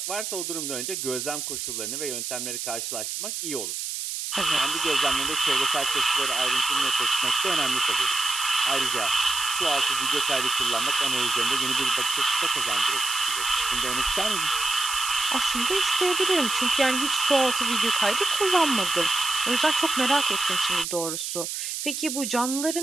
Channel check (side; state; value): right; noise; hiss, 4 dB below the sound